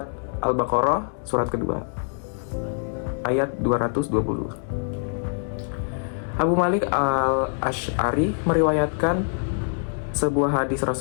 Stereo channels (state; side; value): silent; right; 62 dB below the other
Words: Al-Baqarah surat kedua ayat 220. Abu Malik Al-Asy'ari meriwayatkan sebuah hadis